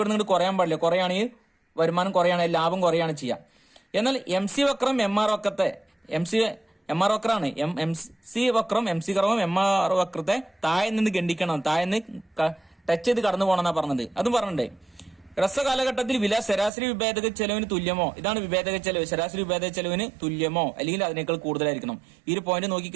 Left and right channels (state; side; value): drops out; left; at 16.7 s